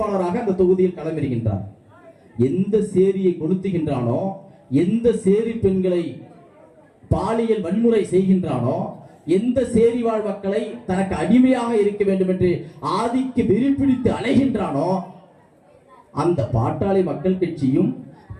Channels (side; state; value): both; identical; correlation 1.00